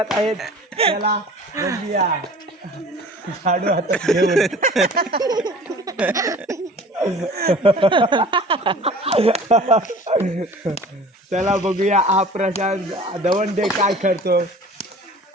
आहेत त्याला. बघूया झाडू हातात घेऊन. चला बघूया हा प्रशांत दवंडे काय करतो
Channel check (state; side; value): normal; both; correlation 0.44